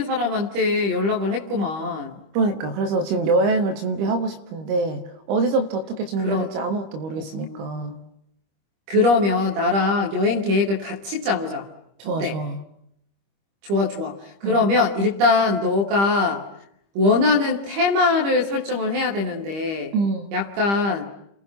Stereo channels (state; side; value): late; left; 25 ms